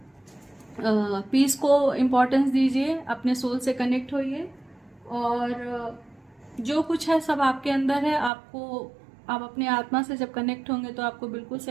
पीस को इम्पोर्टेंस दीजिए, अपने सोल से कनेक्ट होइए और जो कुछ है सब आपके अंदर है। आपको, आप अपने आत्मा से जब कनेक्ट होंगे तो आपको बिल्कुल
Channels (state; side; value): drops out; left; at 8.3 s